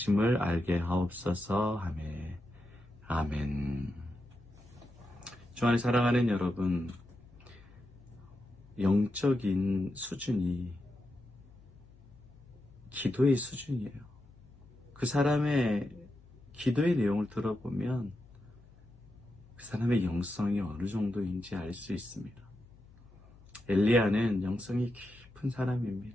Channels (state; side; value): noise; left; hum, 24 dB below the sound